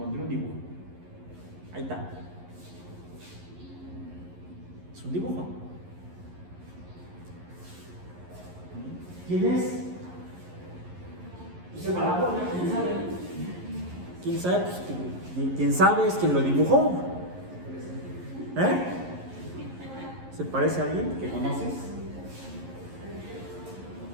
un dibujo. Ahí está. Es un dibujo. ¿Quién es? Dice para la ¿quién sabe? ¿Quién sabe? Pues, ¿quién sabe es quien lo dibujó? ¿Eh? ¿Se parece a alguien que conoces?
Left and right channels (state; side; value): late; left; 11 ms